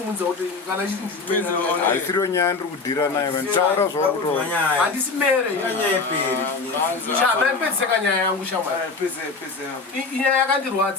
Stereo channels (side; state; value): right; quieter; 4.2 dB